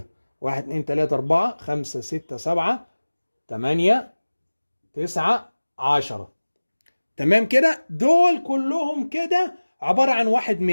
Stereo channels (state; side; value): inverted; both; correlation -1.00